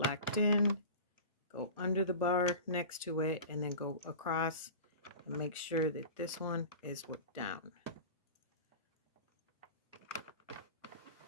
in, go under the bar next to it, and then go across and make sure that this one is down.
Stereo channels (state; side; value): inverted; both; correlation -0.35